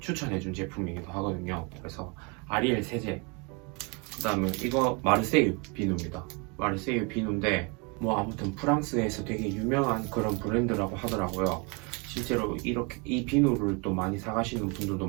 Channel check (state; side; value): quieter; left; 31.4 dB